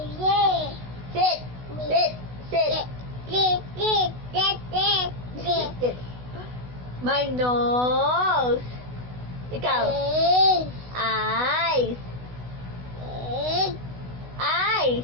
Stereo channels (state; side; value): late; left; 16 ms